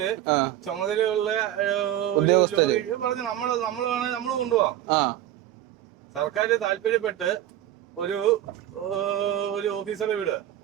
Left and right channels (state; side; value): quieter; left; 12.4 dB